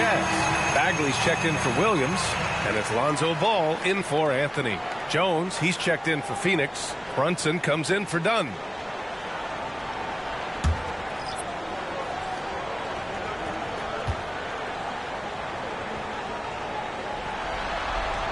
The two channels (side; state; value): both; identical; correlation 1.00